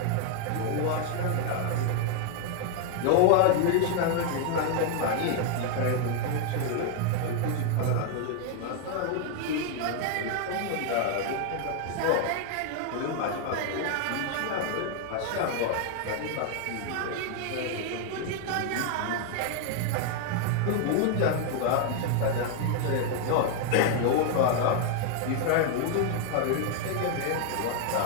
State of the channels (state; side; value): different; both; correlation 0.00